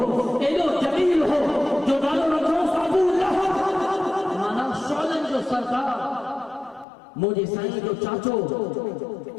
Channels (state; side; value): drops out; right; at 6.9 s